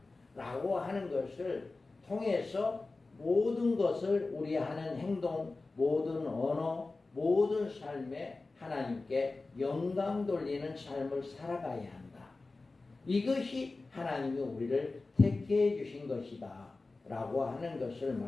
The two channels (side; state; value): right; quieter; 3.5 dB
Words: 라고 하는 것을 통해서 모든 것을 우리 하는 행동, 모든 언어, 모든 삶에 하나님께 영광 돌리는 삶을 살아가야 한다. 이것이 하나님이 우리를 택해 주신 것이다 라고 하는 것을